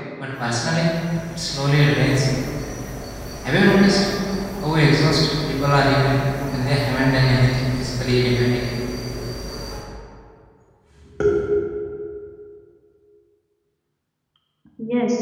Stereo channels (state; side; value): identical; both; correlation 1.00